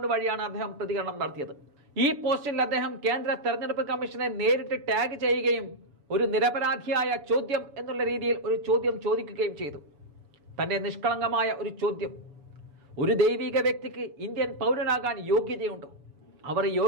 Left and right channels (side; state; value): left; late; 7.0 ms